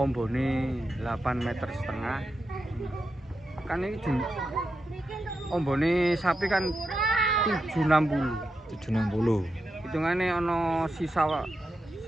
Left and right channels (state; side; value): normal; both; correlation 0.87